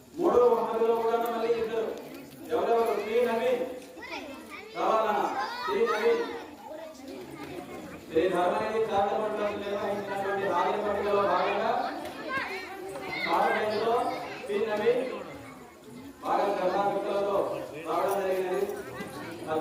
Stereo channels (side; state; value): both; identical; correlation 1.00